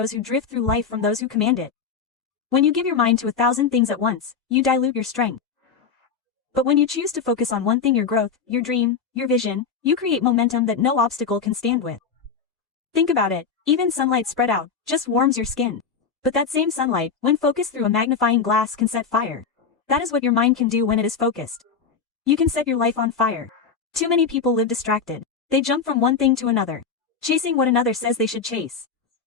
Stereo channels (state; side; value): quieter; right; 5.9 dB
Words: who drift through life from those who command it. When you give your mind to 1,000 things at once, you dilute your strength. But when you choose to focus on one thing, your growth, your dream, your vision, you create momentum that no obstacle can stand with. Think about it, even sunlight spread out just warms your skin. But that same sunlight, when focused through a magnifying glass, can set fire. That is what your mind can do when it is focused. You can set your life on fire. Too many people live distracted. They jump from one thing to another, chasing what another says they should chase.